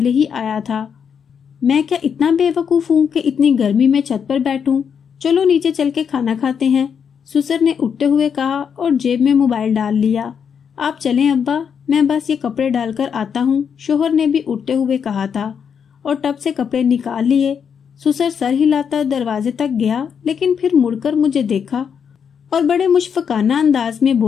ही आया था। मैं क्या इतना बेवकूफ हूँ कि इतनी गर्मी में छत पर बैठूं? चलो नीचे चल के खाना खाते हैं, सुसर ने उठते हुए कहा और जेब में मोबाइल डाल लिया। आप चलें अब्बा, मैं बस ये कपड़े डालकर आता हूँ, शोहर ने भी उठते हुए कहा था और टब से कपड़े निकाल लिए। सुसर सर हिलाता दरवाजे तक गया, लेकिन फिर मुड़कर मुझे देखा और बड़े मुशफकाना अंदाज में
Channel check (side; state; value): right; quieter; 7.1 dB